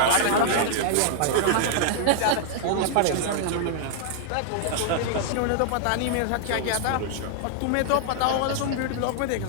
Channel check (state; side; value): different; both; correlation -0.01